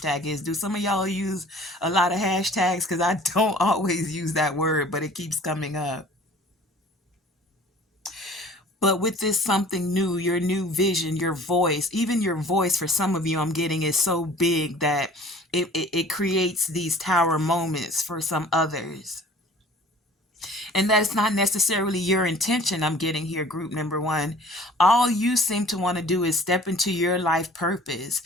is. Do some of y'all use a lot of hashtags? Because I don't always use that word, but it keeps coming up. But with this something new, your new vision, your voice, even your voice for some of you I'm getting is so big that it creates these tower moments for some others. And that's not necessarily your intention I'm getting here, group number one. All you seem to want to do is step into your life purpose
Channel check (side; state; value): both; normal; correlation 0.48